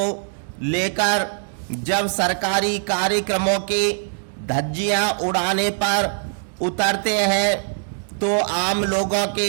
लेकर जब सरकारी कार्यक्रमों के धज्जियां उड़ाने पर उतरते हैं तो आम लोगों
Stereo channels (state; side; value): silent; left; 64 dB below the other